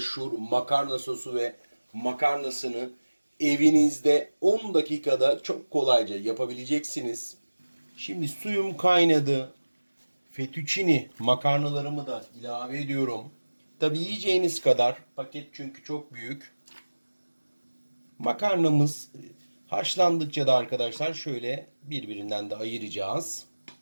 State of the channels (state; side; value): inverted; both; correlation -1.00